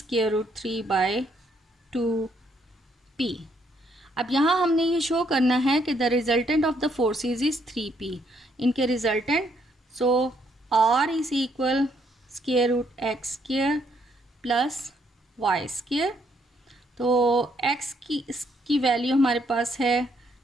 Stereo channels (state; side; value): normal; both; correlation 0.71